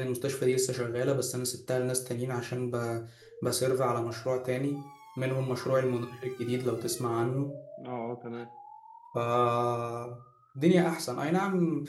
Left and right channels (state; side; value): identical; both; correlation 1.00